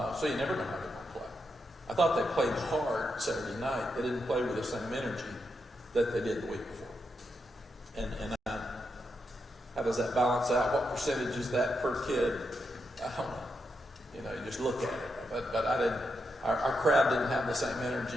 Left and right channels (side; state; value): both; normal; correlation 0.84